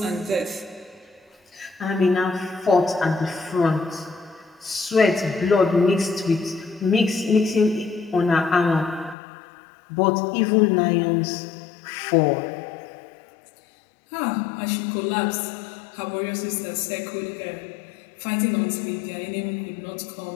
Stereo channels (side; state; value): right; drops out; at 9.2 s